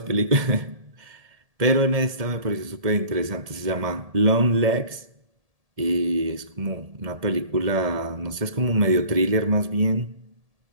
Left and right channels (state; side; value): late; left; 1.7 ms